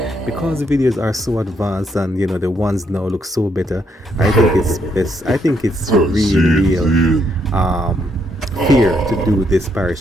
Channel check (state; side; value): normal; both; correlation 0.75